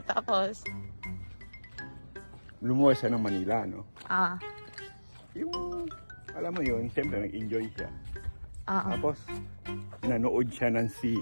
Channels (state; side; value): inverted; both; correlation -1.00